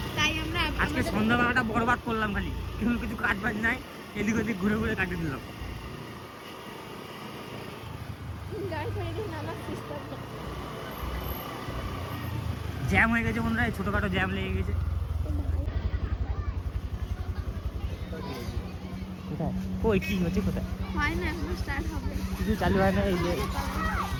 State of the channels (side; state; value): both; identical; correlation 1.00